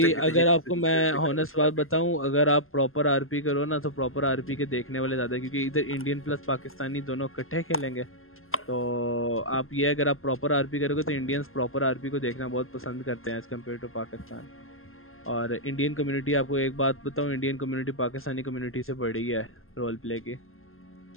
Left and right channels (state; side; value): late; right; 0.61 ms